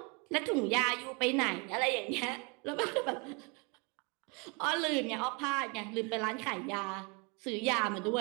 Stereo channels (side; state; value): left; quieter; 31.6 dB